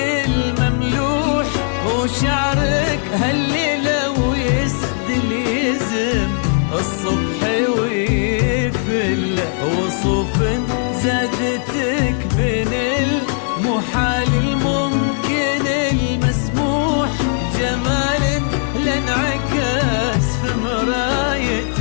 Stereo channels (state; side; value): silent; right; digital silence